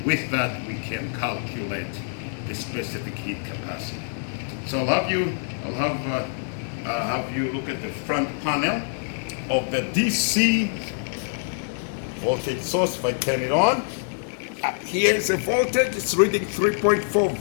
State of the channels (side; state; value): right; silent; digital silence